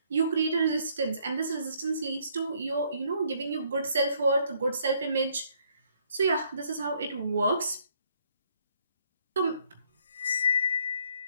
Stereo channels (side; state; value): both; inverted; correlation -0.67